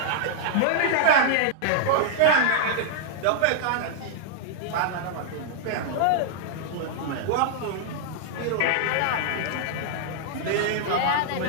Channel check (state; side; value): different; both; correlation -0.01